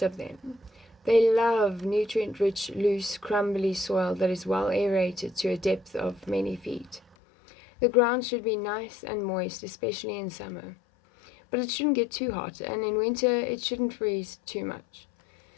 of them. They love nutrient-rich, loose, crumbly soil that is well aerated to a depth of many feet. The ground should be nice and moist, especially in summer. But it shouldn't get too hot, and in winter it shouldn't freeze too much.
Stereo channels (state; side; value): drops out; right; at 7.0 s